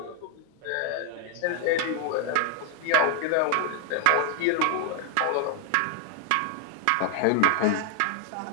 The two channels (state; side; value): different; both; correlation 0.00